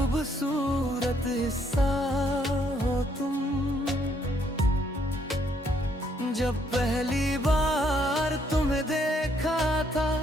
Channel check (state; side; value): normal; both; correlation 0.70